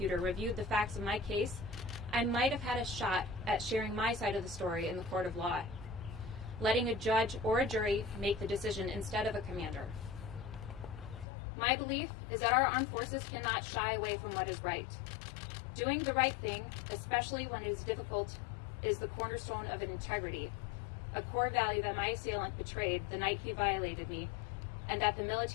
reviewed the facts of my case, I might have had a shot at sharing my side of the story in the court of law, letting a judge or a jury make the decision instead of a commander. My belief is that our armed forces cannot shy away from what is right. Doing the right thing, especially when it is difficult, is the cornerstone of an integrity, a core value that my assailant betrayed the night he violated me, and that the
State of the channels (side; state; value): right; drops out; at 11.2 s